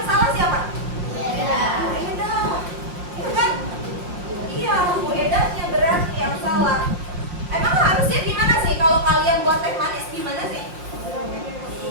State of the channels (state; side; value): late; left; 5.6 ms